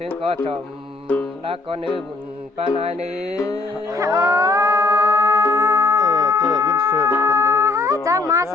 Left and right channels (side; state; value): right; quieter; 3.5 dB